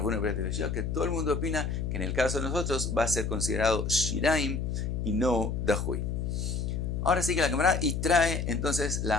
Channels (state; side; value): noise; left; hum, 1 dB below the sound